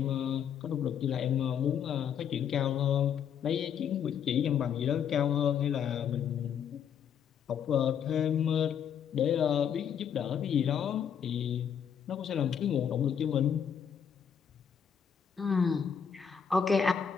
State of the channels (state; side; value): quieter; right; 8.0 dB